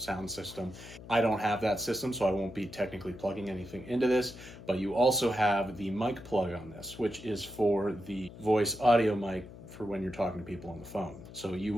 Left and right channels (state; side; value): noise; left; hum, 16 dB below the sound